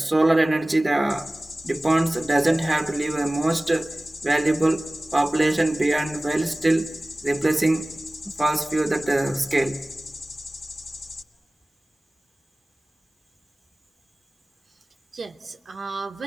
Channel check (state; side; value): normal; both; correlation 0.98